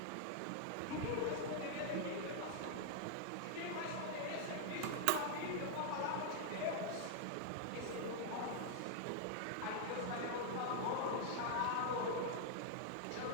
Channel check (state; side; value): different; both; correlation 0.00